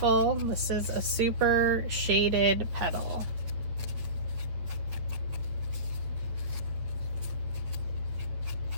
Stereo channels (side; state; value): left; late; 9.2 ms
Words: This is a super shaded petal.